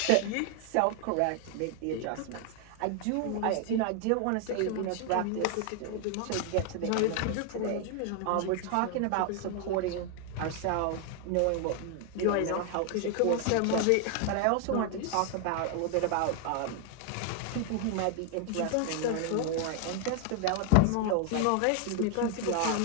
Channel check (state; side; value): different; both; correlation 0.00